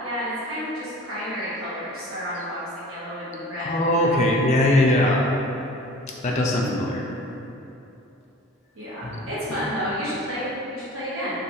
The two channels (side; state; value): both; normal; correlation 0.43